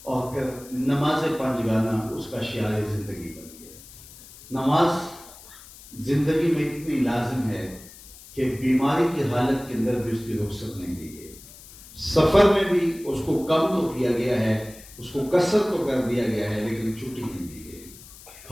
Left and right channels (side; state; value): left; noise; hiss, 19 dB below the sound